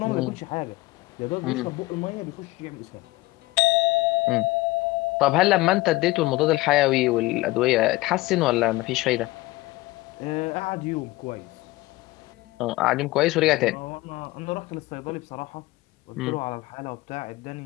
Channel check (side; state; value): right; quieter; 20.0 dB